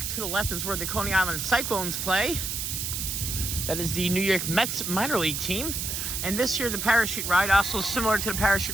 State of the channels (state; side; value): noise; right; hiss, 3 dB below the sound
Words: to the left is where the Coney Island Cyclones play. That is the New York Mets minor league team. And this year, the parachute ride, also similar to the